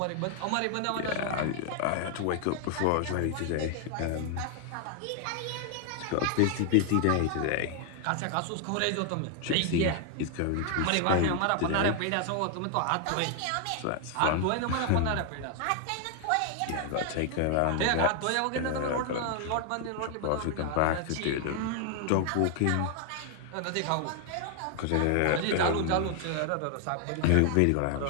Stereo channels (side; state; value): both; different; correlation 0.00